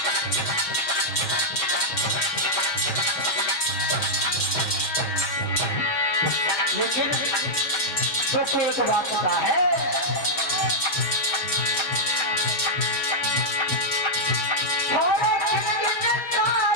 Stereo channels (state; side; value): late; right; 6.2 ms